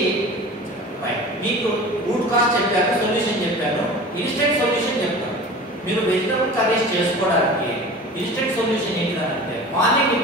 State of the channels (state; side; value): normal; both; correlation 0.38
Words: రైట్. మీకు రూట్ కాజ్ చెప్పాను, సొల్యూషన్ చెప్పాను, ఇన్స్టెంట్ సొల్యూషన్ చెప్తాను. మీరు వెజిటబుల్ కర్రీస్ చేసుకోవడానికి ఇన్స్టెంట్ సొల్యూషన్ ఏంటిదంటే మార్నింగ్